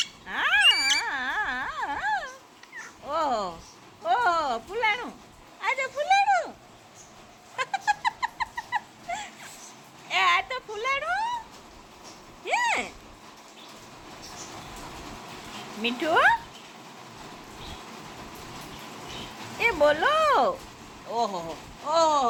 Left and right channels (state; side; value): identical; both; correlation 1.00